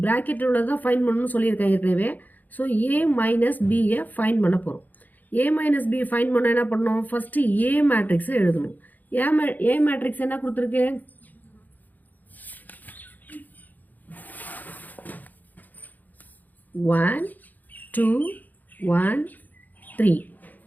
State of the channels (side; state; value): right; late; 0.083 ms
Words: ப்ராக்கெட்டில் உள்ளதான் find பண்ணணும்னு சொல்லியிருக்கேன் ஏற்கனவே. So a minus பியை find பண்ண போகிறோம். a மைனஸ் பி ஃபைண்ட் பண்ண என்ன பண்ணணும், ஃபஸ்ட்டு a மேட்ரிக்ஸை எழுதணும். a மேட்ரிக்ஸ் என்ன கொடுத்துருக்கு, ஒன் டூ ஒன் த்ரீ.